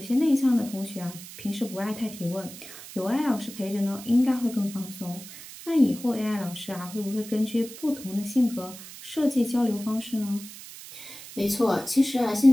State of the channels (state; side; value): noise; right; hiss, 14 dB below the sound